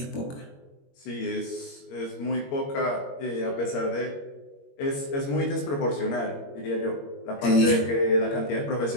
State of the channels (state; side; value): late; right; 21 ms